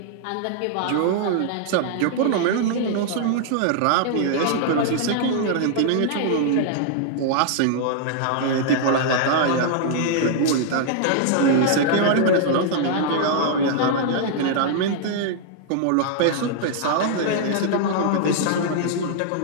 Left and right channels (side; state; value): both; different; correlation -0.01